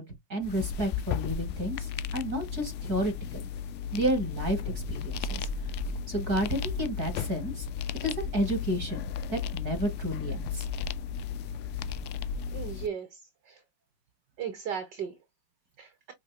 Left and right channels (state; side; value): late; left; 4.6 ms